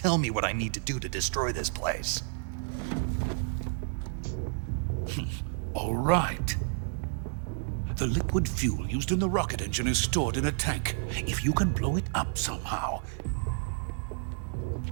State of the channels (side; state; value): left; silent; digital silence